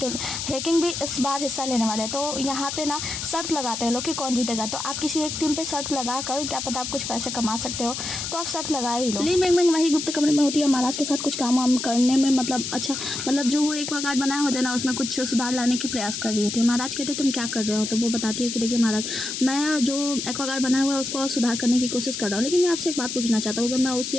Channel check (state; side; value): noise; left; hiss, 5 dB below the sound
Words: भी इस बार हिस्सा लेने वाले हैं। तो यहाँ पे ना शर्त लगाते हैं लोग कि कौन जीतेगा। तो आप किसी एक टीम पे शर्त लगा कर क्या पता आप कुछ पैसे कमा सकते हो, तो आप शर्त लगाए ही लो। ली मिंग वही गुप्त कमरे में होती है, महाराज के साथ कुछ काम वाम करने में मतलब जो वो एक्वागार्ड बनाया होता है ना उसमें कुछ सुधार लाने की प्रयास कर रही होती है। महाराज कहते हैं तुम क्या कर रहे हो, तो वो बताती है कि देखिए महाराज मैं जो एक्वागार्ड बनाया हुआ है उसको और सुधार करने की कोशिश कर रहा हूँ, लेकिन मैं आपसे एक बात पूछना चाहता हूँ, अगर मैं